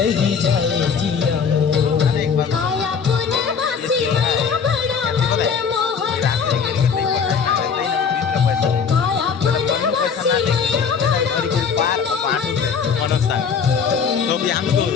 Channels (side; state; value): right; quieter; 6.3 dB